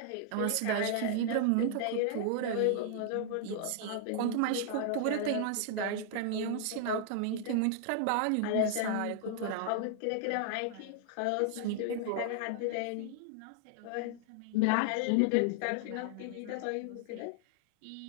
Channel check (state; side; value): different; both; correlation -0.01